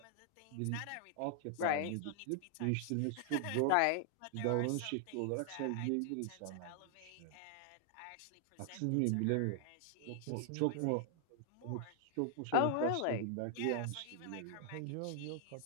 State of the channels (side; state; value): both; different; correlation 0.00